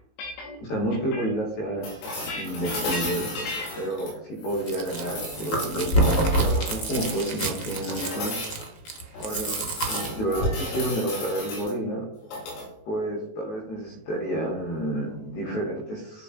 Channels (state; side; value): late; right; 18 ms